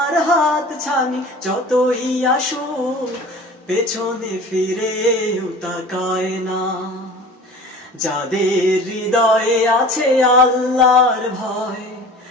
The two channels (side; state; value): both; normal; correlation 0.41